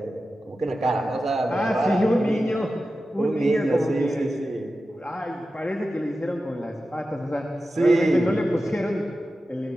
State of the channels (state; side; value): normal; both; correlation 0.93